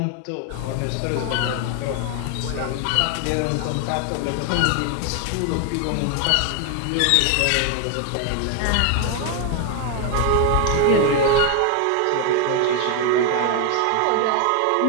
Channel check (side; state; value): both; different; correlation 0.00